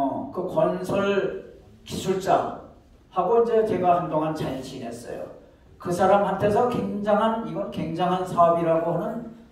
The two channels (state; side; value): identical; both; correlation 1.00